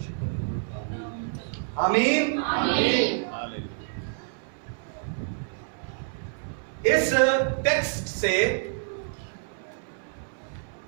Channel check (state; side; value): silent; left; 59 dB below the other